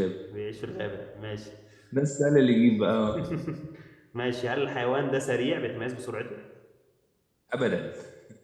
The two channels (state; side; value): identical; both; correlation 1.00